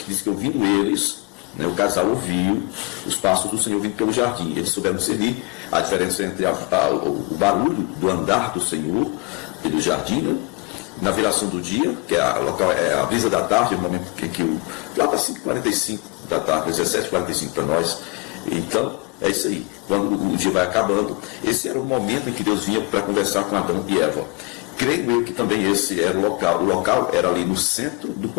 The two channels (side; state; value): right; quieter; 27.5 dB